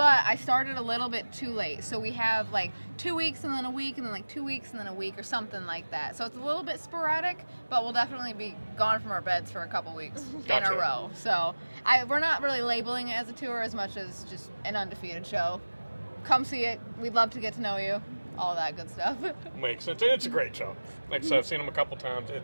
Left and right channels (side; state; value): both; inverted; correlation -1.00